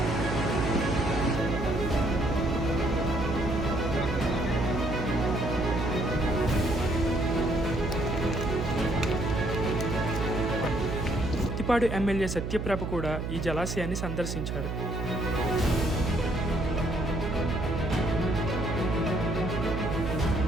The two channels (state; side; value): noise; right; hum, 3 dB below the sound